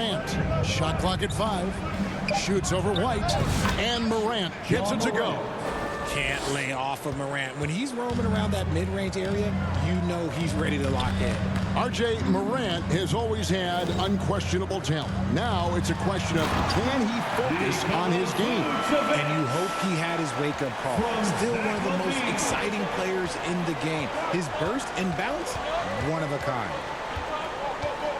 Shot clock at 5. Shoots over White. And Morant gets it to go. Can't lay off of Morant. When he's roaming around that mid-range area, you know he's ready to lock in. RJ, Morant has always had unquestionable talent. Now it's a question of can he focus on his game? And you hope he had his wake-up call. Still one of the most exciting players in the game. His burst and bounce, one of a kind.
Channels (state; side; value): identical; both; correlation 1.00